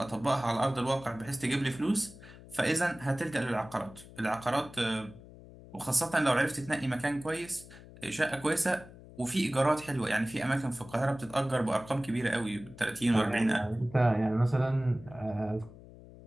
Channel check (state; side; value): noise; left; hum, 19 dB below the sound